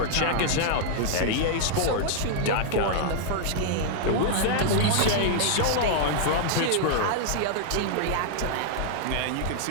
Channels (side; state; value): both; different; correlation -0.01